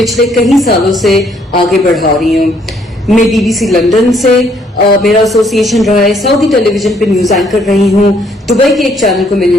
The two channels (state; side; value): normal; both; correlation 0.67